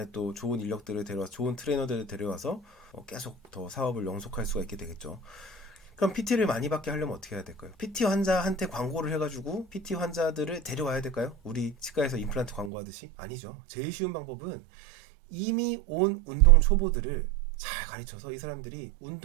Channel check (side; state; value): left; drops out; at 12.7 s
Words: 또 좋은 인력들을 데려와서 좋은 트레이너들을 데려와서 계속 더 사업을 영속할 수가 있게 되겠죠. 그럼 PT를 많이 받게 하려면 어떻게 해야 될까요? PT 환자한테 광고를 해가지고 PT 환자들을 데려와야 될까요? 우리 치과에서 임플란트 광고하듯이? 아니죠. 제일 쉬운 방법은 이미 온 운동 초보들을 잘 가르쳐서 이 사람들이